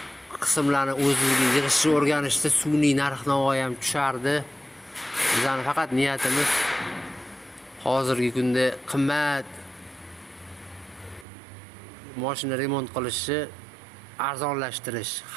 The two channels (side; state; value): left; drops out; at 11.2 s